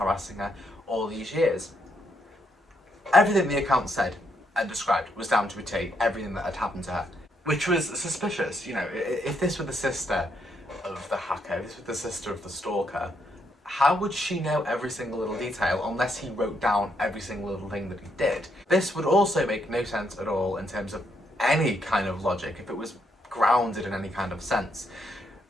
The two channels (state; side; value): normal; both; correlation 0.76